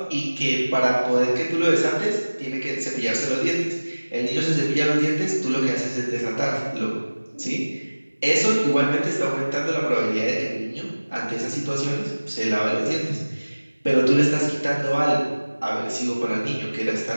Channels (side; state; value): both; inverted; correlation -1.00